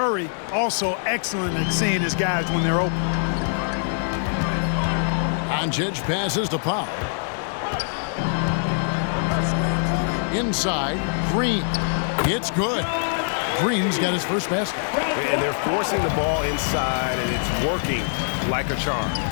also excellent at seeing his guys when they're open. Doncic passes to Powell. Inside, Green. It's good. Green's got his first basket. And they're forcing the ball inside, and it's working like a charm.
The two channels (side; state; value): right; silent; digital silence